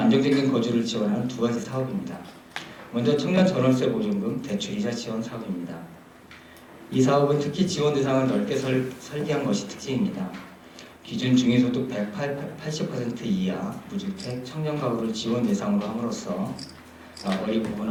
거주를 지원하는 두 가지 사업입니다. 먼저 청년 전월세 보증금 대출이자 지원 사업입니다. 이 사업은 특히 지원 대상을 넓게 설계한 것이 특징입니다. 기준 중위소득 180% 이하 무주택 청년 가구를 지원 대상으로 함으로써 어리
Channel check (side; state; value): both; identical; correlation 1.00